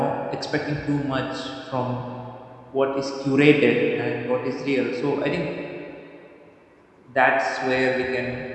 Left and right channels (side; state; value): both; identical; correlation 1.00